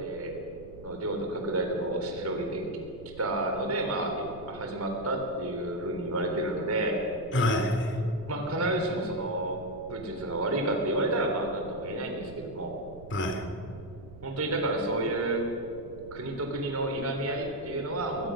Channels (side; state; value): right; noise; rumble, 16 dB below the sound